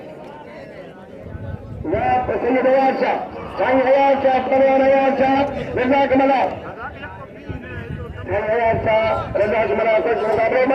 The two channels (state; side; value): identical; both; correlation 1.00